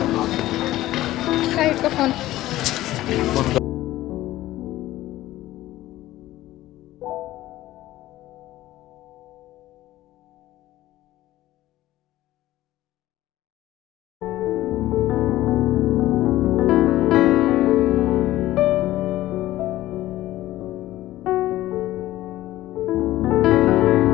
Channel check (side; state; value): right; quieter; 15.5 dB